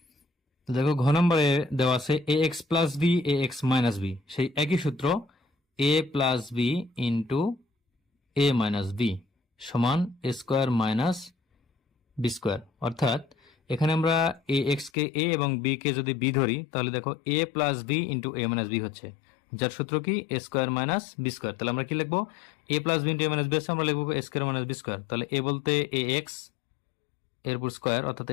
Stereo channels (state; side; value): drops out; right; at 14.9 s